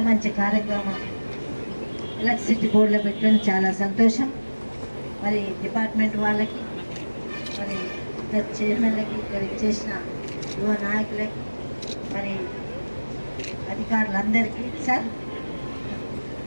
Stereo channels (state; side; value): inverted; both; correlation -1.00